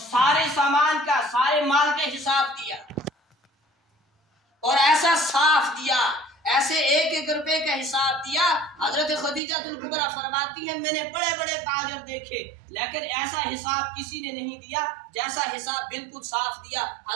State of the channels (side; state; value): left; drops out; at 9.4 s